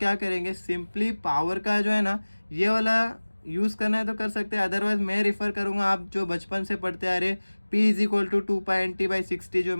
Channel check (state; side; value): inverted; both; correlation -1.00